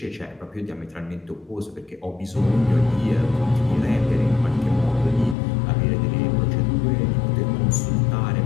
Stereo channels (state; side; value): drops out; right; at 5.4 s